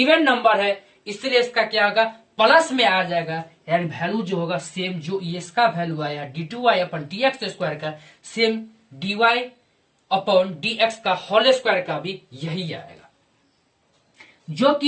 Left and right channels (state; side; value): identical; both; correlation 1.00